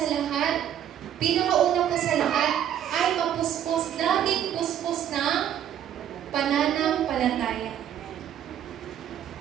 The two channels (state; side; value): quieter; left; 10.2 dB